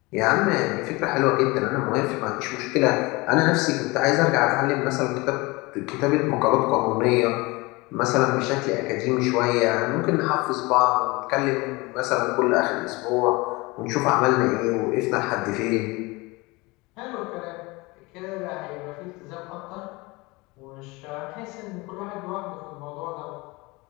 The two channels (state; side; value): quieter; right; 24.0 dB